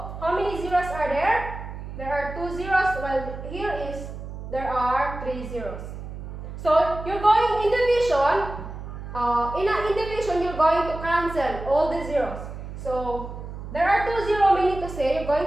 how many zeros are there? There are 2 zeros, while here there are 3 zeros. So you're going in division, in division you're going to cancel all the zeros. So there are 2 zeros, meaning to say you're going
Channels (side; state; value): right; noise; hum, 10 dB below the sound